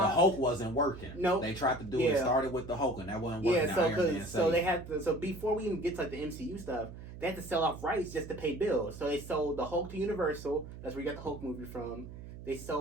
Hulk wasn't working. No, they tried to do it. Started with the Hulk and that wasn't working. So they had to. So before we even get to like the MCU stuff, they had to sell off rights just to pay bills. So they sold the Hulk to Universal. That's where you got the Hulk movie from. They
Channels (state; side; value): noise; right; hum, 13 dB below the sound